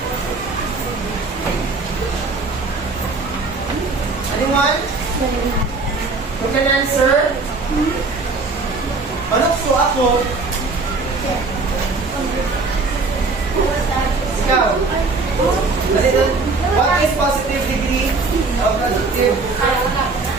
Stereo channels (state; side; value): quieter; left; 3.8 dB